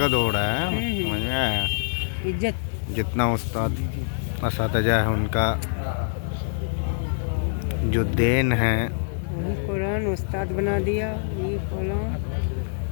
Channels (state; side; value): silent; right; digital silence